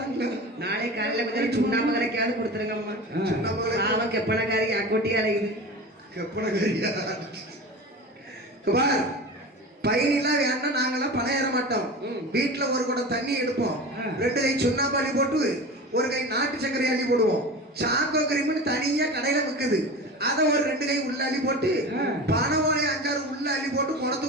நாளை காலையில கொஞ்சம் சுண்ணாம்பு கரைக்காவது கொடுத்துருங்கம்மா. அவன் கெப்பனக்காரி அக்கோட்டியா அலையுது. கெப்பனக்காரியா பார், பயணிலாம் வேணா நாங்கெல்லாம் பணம் ஏற மாட்டோம். வீட்டுல ஒரு குடம் தண்ணி எடுப்போம், 2 கை சுண்ணாம்பு அள்ளி போட்டு ஒரு கை நாட்டு சர்க்கரை அள்ளி போடுவோம். சாக்கோ கிரீம்னு தனியா கடையில விக்குது. அதை ஒரு 2 கை உள்ள அள்ளி போட்டு பனவாழை 5-6 உள்ள அள்ளி போட்டு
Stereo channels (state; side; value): normal; both; correlation 0.31